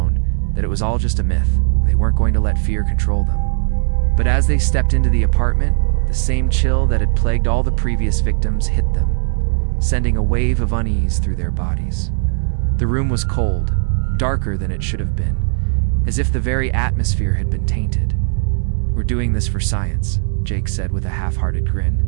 that it was all just a myth. They weren't going to let fear control them. But as they stepped into the apartment, the same chill that had plagued all the previous victims hit them, sending a wave of unease through their bodies. The room was cold, darker than it should have been, as if the very atmosphere had been tainted. "We're doing this for science," Jake said with a half-hearted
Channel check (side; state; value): left; silent; digital silence